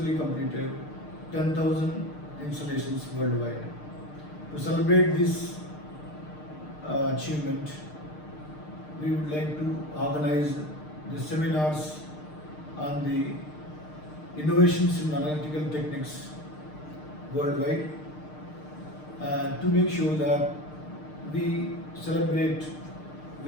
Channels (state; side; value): late; right; 6.6 ms